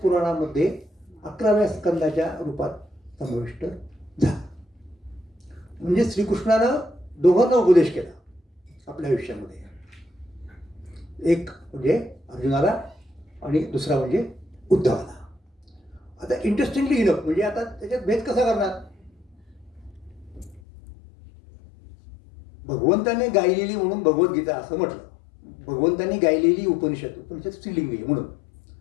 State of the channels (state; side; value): drops out; right; at 20.6 s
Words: पुराणामध्ये 11व्या स्कंदाच्या रूपात समाविष्ट झाला. म्हणजे श्रीकृष्णानं दोघांना उपदेश केला आपल्या आयुष्यामध्ये. एक म्हणजे अर्जुनाला आणि दुसरा म्हणजे उद्धवाला. आता इंटरेस्टिंगली इनफ म्हणजे आता त्याच्यात भेद कसा करणार. भगवंताने गायलेली म्हणून भगवद्गीता असं म्हटलं. भगवंतांनी गायलेली उपनिषद स्त्रीलिंगी